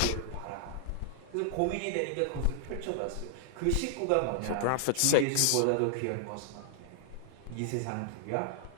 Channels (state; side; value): different; both; correlation 0.00